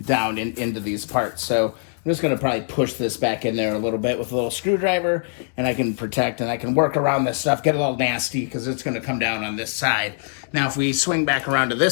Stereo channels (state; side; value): silent; right; 64 dB below the other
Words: down into these parts. So I'm just going to probably push this back in there a little bit with a little screwdriver, and I can protect and I can work around this stuff, get a little nasty because it's going to come down on this side. Now, if we swing back around to